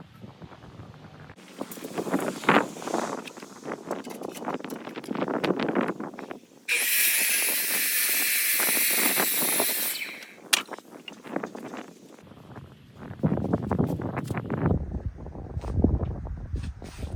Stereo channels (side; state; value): both; identical; correlation 1.00